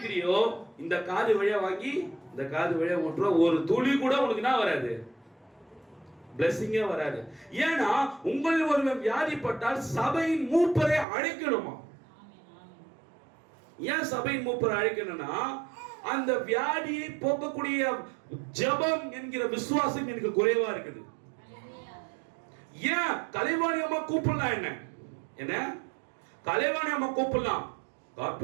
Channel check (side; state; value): left; drops out; at 11.1 s